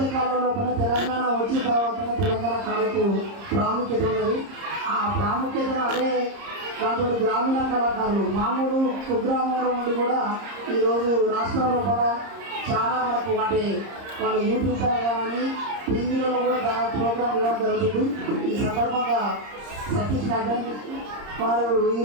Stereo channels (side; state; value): left; late; 30 ms